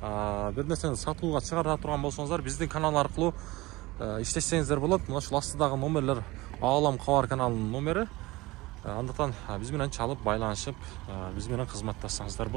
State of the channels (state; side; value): quieter; left; 20.7 dB